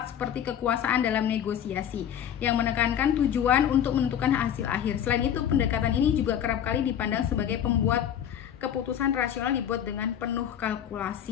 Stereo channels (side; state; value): right; quieter; 9.6 dB